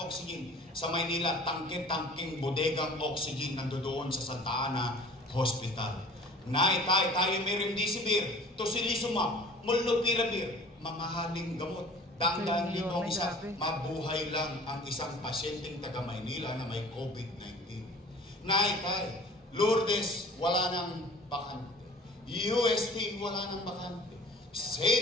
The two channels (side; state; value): both; normal; correlation 0.47